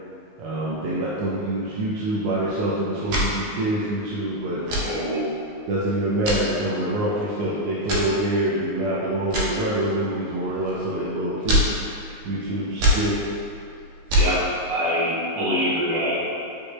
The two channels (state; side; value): late; left; 19 ms